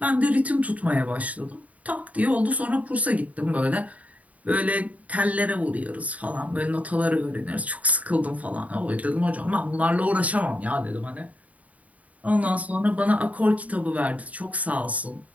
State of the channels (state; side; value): late; left; 0.070 ms